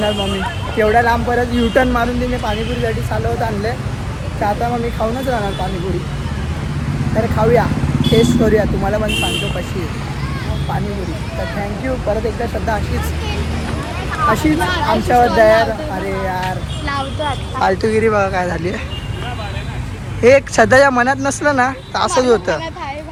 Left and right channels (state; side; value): identical; both; correlation 1.00